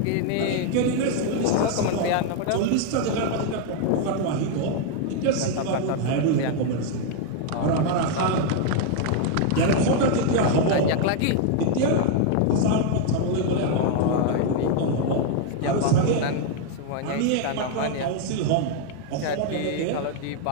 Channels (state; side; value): different; both; correlation 0.00